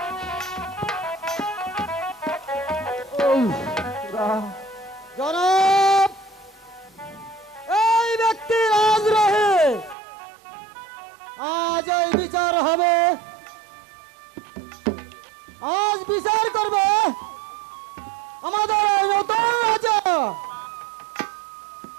জনাব, এই ব্যক্তি রাজদ্রোহী। আজ এই বিচার হবে, আজ বিচার করবে আমাদের এই নতুন রাজা।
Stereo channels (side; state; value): left; drops out; at 10.0 s